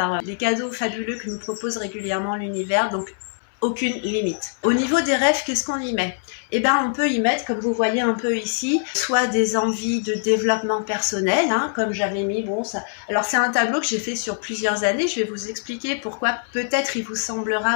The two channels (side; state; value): right; silent; 63 dB below the other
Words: les cadeaux fabuleux que nous propose régulièrement l'univers, donc aucune limite. Au niveau des rêves, qu'est-ce qu'on y met? On peut y mettre, comme vous voyez un peu ici, soit des envies de développement personnel, comme j'avais mis, alors c'est un tableau que j'ai fait sur plusieurs années, je vais vous expliquer pourquoi peut-être il vous